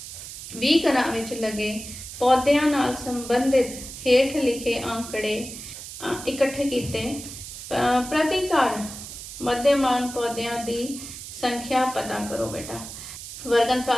20 घरां विच लगे पौधों नाल संबंधित हेठ लिखे आंकड़े इकट्ठे किए। प्रति घर मध्यमान पौधों की संख्या पता करो बेटा। वर्ग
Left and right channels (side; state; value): right; noise; hiss, 11 dB below the sound